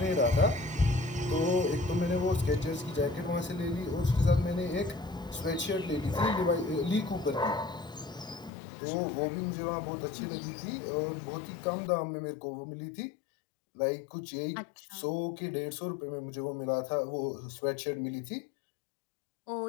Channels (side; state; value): right; drops out; at 8.5 s